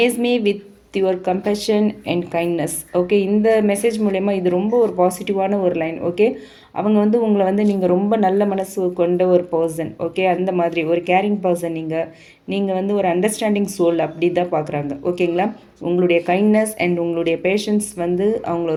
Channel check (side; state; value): both; identical; correlation 1.00